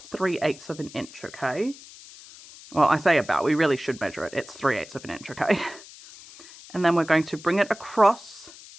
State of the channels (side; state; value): left; noise; hiss, 19 dB below the sound